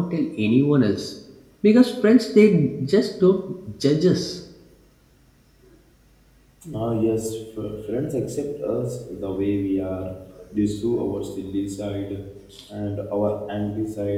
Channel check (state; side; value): identical; both; correlation 1.00